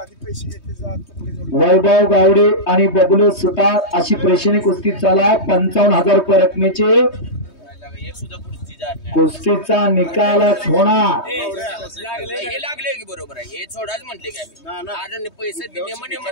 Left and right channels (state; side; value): late; right; 3.2 ms